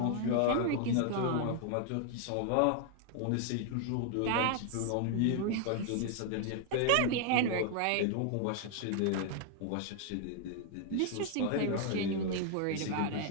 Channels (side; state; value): both; different; correlation 0.00